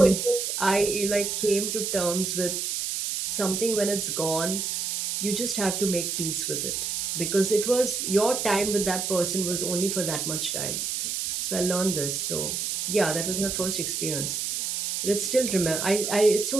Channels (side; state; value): right; noise; hiss, 2 dB below the sound